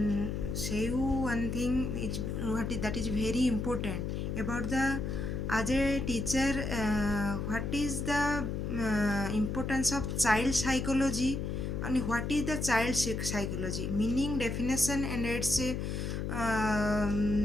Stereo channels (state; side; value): noise; left; hum, 2 dB below the sound